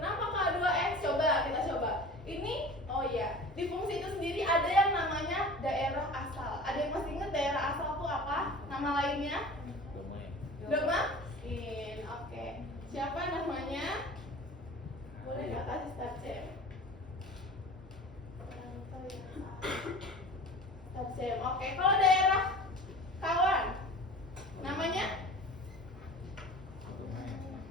Kak 2x? Coba kita coba. Ini, oh iya, di fungsi itu sendiri ada yang namanya daerah asal. Ada yang masih ingat daerah asal itu apa? Nama lainnya? Domain. Oke. Siapa namanya? Boleh nggak kasih start jam? Start jam. Oke. Kalau daerah kawan, namanya?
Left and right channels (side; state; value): both; normal; correlation 0.39